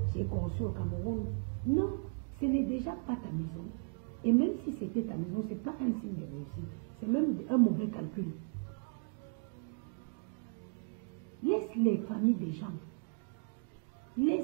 j'ai conçu au Cameroun. Non, ce n'est déjà pas ta maison. Et même si c'était ta maison, ce n'est pas un signe de réussite. C'est même un mauvais calcul. Laisse les familles des gens.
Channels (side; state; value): left; quieter; 38.6 dB